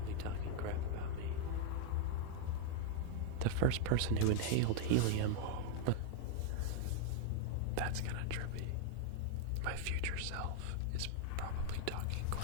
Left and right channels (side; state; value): both; different; correlation 0.00